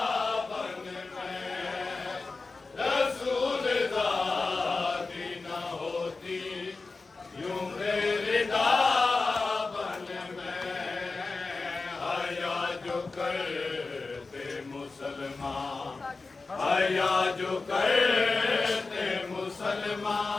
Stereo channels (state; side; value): quieter; right; 3.9 dB